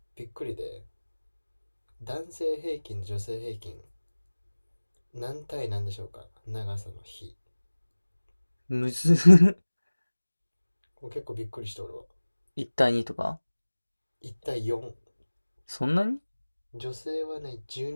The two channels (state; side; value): inverted; both; correlation -1.00